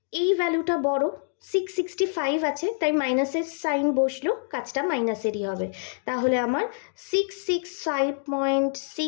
এই ভ্যালুটা বড়, 665 আছে তাই মাইনাসের সাইন বসলো, কাজটা মাইনাসেরই হবে। তাহলে আমার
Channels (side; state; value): right; silent; digital silence